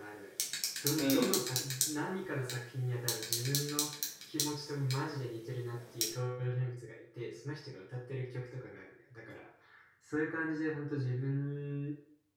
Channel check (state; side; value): identical; both; correlation 1.00